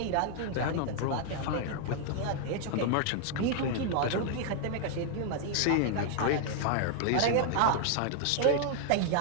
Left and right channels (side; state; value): both; different; correlation 0.00